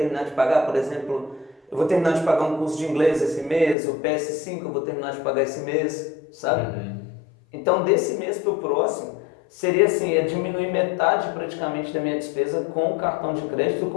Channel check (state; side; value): drops out; right; at 3.8 s